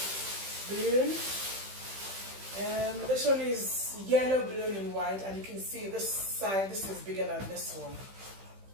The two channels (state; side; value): late; left; 15 ms